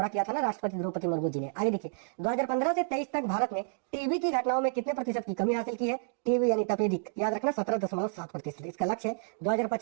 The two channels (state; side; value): silent; left; digital silence